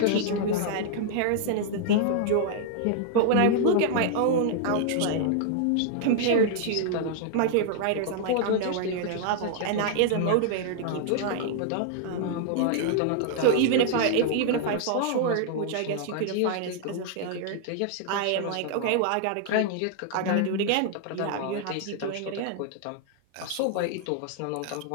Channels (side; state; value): both; different; correlation -0.01